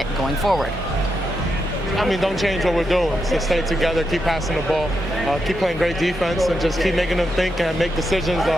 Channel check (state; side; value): normal; both; correlation 0.84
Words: going forward? I mean, don't change what we're doing. So stay together, keep passing the ball, keep playing great defense, and just keep making them think and make decisions,